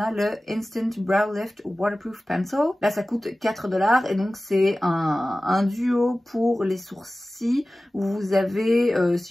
le Instant Brow Lift Waterproof Pencil. Là, ça coûte 4 $ et donc c'est un duo pour les sourcils où vous avez,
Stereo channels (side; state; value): both; normal; correlation 0.97